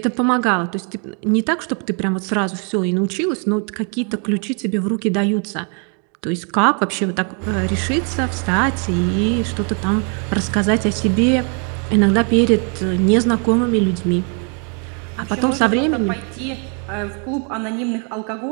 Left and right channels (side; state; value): left; quieter; 38.8 dB